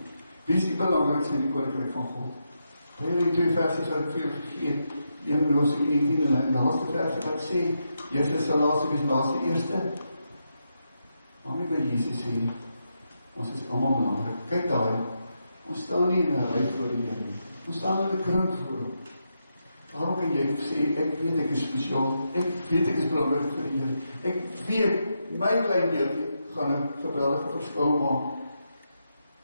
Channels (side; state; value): both; inverted; correlation -0.84